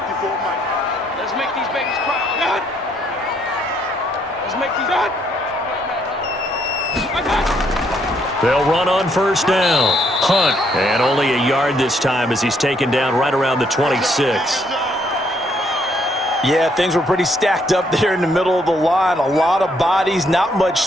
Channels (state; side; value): normal; both; correlation 0.70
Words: Let's make these babies cry. Let's make these They'll run on first down. Hunt, and only a yard this time as he's taken down right around the 26. Yeah, things were pretty stacked up there in the middle of the line. A lot of bodies, not much